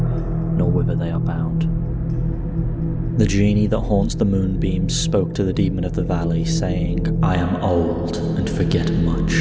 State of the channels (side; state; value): both; identical; correlation 1.00